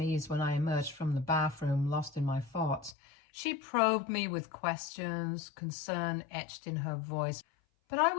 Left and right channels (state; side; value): drops out; right; at 3.0 s